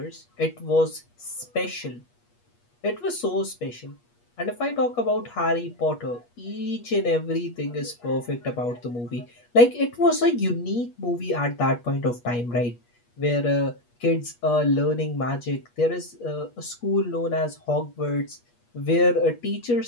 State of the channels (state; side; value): late; right; 8.3 ms